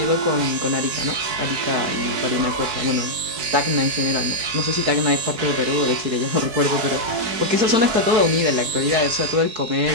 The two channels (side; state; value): left; late; 4.7 ms